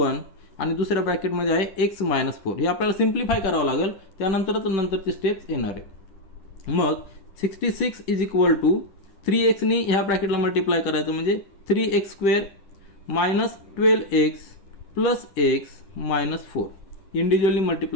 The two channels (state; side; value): late; right; 10 ms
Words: आणि दुसऱ्या ब्रॅकेटमध्ये आहे x - 4. हे आपल्याला सिम्प्लिफाय करावं लागेल, त्यानंतरच नंतरचे स्टेप्स येणार आहे. मग 66 = 3x नी ह्या ब्रॅकेटला मल्टिप्लाय करायचं म्हणजे 3x² - 12x + x - 4 individually